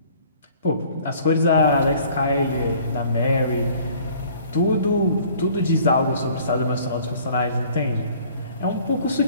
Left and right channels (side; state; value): both; inverted; correlation -0.54